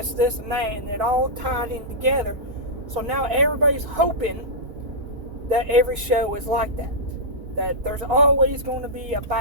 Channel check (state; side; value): late; left; 4.5 ms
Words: and that, and it all tied in together So now everybody's hoping that every show is like that. That there's always going to be a